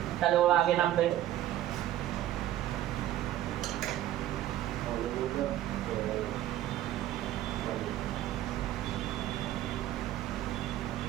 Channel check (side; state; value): left; quieter; 13.1 dB